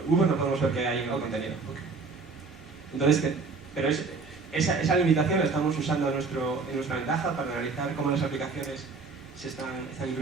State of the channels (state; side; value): quieter; left; 4.4 dB